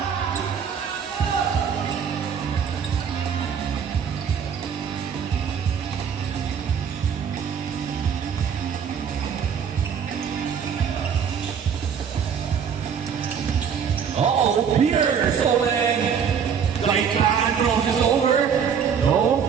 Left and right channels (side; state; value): left; quieter; 7.3 dB